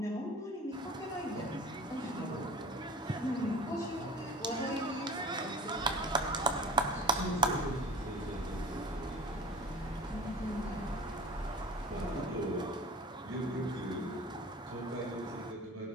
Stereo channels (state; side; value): normal; both; correlation 0.39